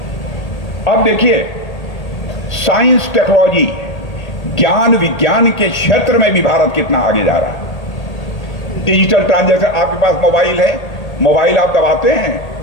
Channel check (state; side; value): late; right; 1.8 ms